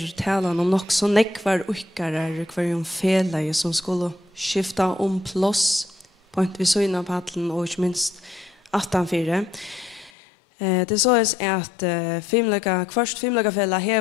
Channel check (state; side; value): drops out; right; at 10.1 s